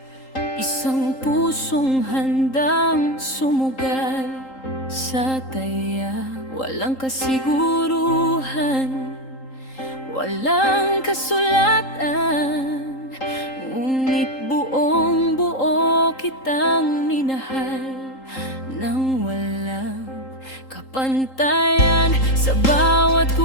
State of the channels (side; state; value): right; late; 3.8 ms